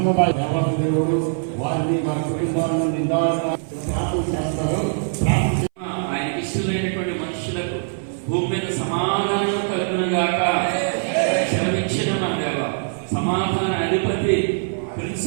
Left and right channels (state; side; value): silent; left; 61 dB below the other